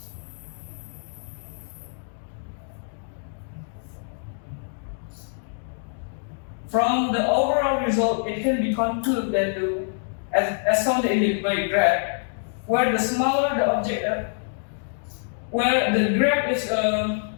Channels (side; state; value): right; silent; digital silence